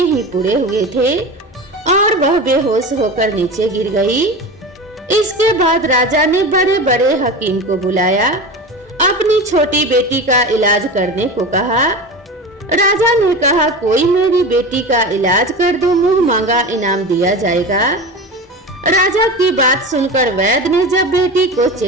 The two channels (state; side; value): normal; both; correlation 0.28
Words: ही पूरे हुए थे और वह बेहोश होकर नीचे गिर गई। इसके बाद राजा ने बड़े बड़े हकीम को बुलाया, अपनी छोटी बेटी का इलाज करने को कहा। राजा ने कहा, कोई मेरी बेटी का इलाज कर दो, मुंह मांगा इनाम दिया जाएगा। राजा की बात सुनकर वैद्य ने जब बेटी को